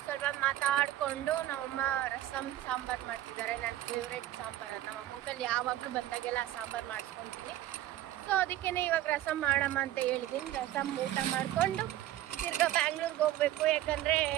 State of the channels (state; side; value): quieter; left; 13.9 dB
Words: ಸ್ವಲ್ಪ ಮಾತಾಡಿಕೊಂಡು ನಮ್ಮಮ್ಮ ರಸಮ್ ಸಾಂಬಾರು ಮಾಡ್ತಿದ್ದಾರೆ. ನನ್ನ ಫೇವ್ರೆಟ್ ಸಾಂಬಾರು ಅದು. ನಮ್ಮ ಅಮ್ಮಂಕಲ್ಲಿ ಯಾವಾಗಲೂ ಬಂದಾಗೆಲ್ಲ ಸಾಂಬಾರು ಮಾಡಿಸ್ಕೊತೀನಿ. ಸೊ ಅದಕ್ಕೇ ಇವಾಗ ರಸಮ್ ಮಾಡಮ್ಮ ಅಂತ ಹೇಳಿದ್ದೀನಿ. ರಸಮ್ ಊಟ ಮಾಡಿಕೊಂಡು ತಿರ್ಗಾ ಬ್ಯಾಂಗ್ಳೂರ್ಗೆ ಹೋಗಬೇಕು. ಯಾಕಂದರೆ